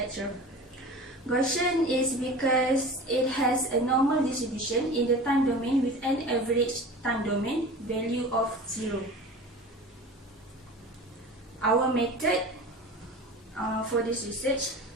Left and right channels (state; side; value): normal; both; correlation 0.36